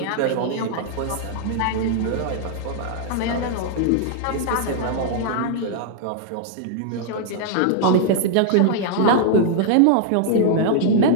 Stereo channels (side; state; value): both; different; correlation -0.01